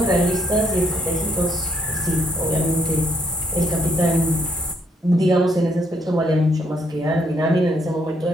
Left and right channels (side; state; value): both; normal; correlation 0.71